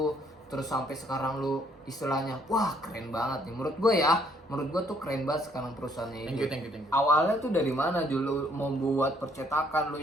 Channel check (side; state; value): both; normal; correlation 0.66